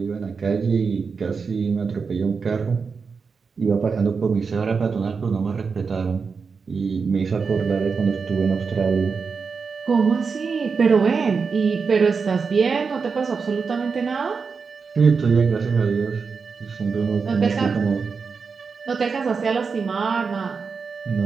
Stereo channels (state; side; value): quieter; left; 5.2 dB